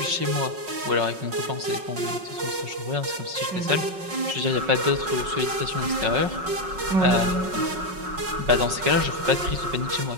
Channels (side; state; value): left; late; 5.4 ms